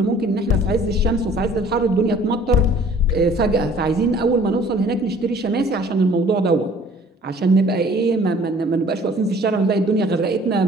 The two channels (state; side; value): normal; both; correlation 0.53